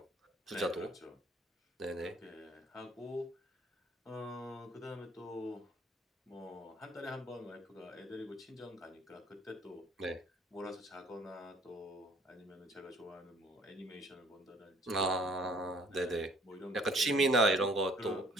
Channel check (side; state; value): both; normal; correlation 0.58